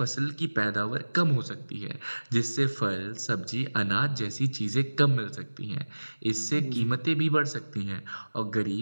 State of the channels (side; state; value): both; inverted; correlation -1.00